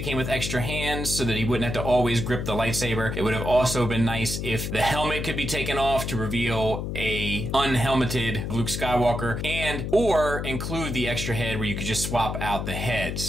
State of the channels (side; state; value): left; noise; hum, 4 dB below the sound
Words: with extra hands so that he wouldn't have to always grip the lightsaber. It would have also been nice if the helmet could be taken off to reveal a unhelmeted Luke Skywalker, or include the extra head where you could just swap out the